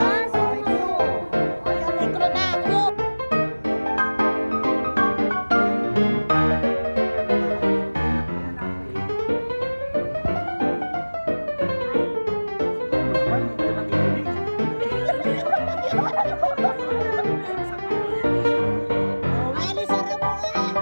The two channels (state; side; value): inverted; both; correlation -1.00